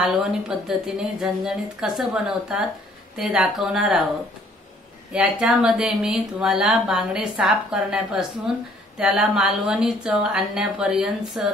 पद्धतीने झणझणीत कसं बनवतात ते दाखवणार आहोत। याच्यामध्ये मी तुम्हाला बांगडे साफ करण्यापासून त्याला मालवणी चव आणण्यापर्यंत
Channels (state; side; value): normal; both; correlation 0.60